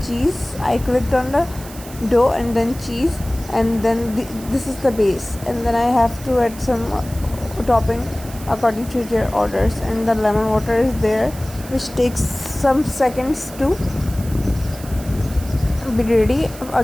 cheese. I clicked on the dough and then cheese, and then this is the base, and then I have to add some topping according to their orders, and the lemon water is there, which takes some seconds to be ready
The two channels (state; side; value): noise; right; hiss, 17 dB below the sound